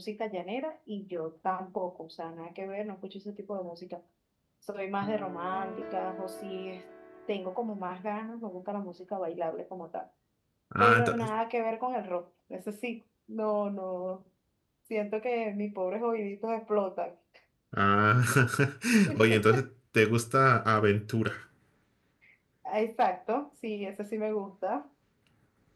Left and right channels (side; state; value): both; identical; correlation 1.00